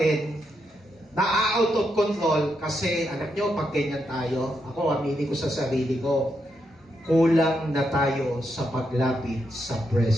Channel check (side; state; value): both; normal; correlation 0.82